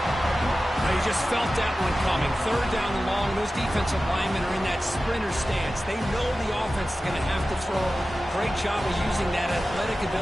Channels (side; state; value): both; normal; correlation 0.95